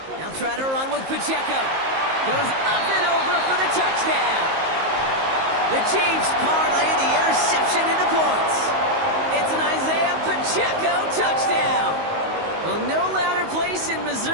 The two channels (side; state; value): left; late; 19 ms